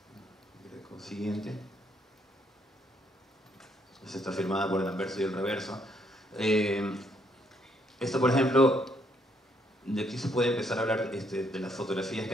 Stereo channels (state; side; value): normal; both; correlation 0.71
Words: Siguiente. Esta está firmada por el anverso y el reverso. Esto, por ejemplo, de aquí se puede empezar a hablar de las fotografías